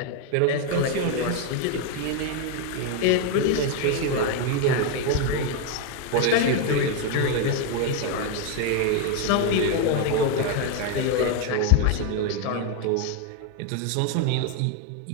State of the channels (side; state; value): both; different; correlation 0.01